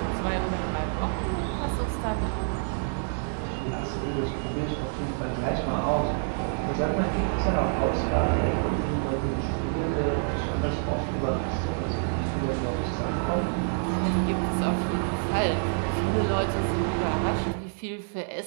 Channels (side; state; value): left; silent; 60 dB below the other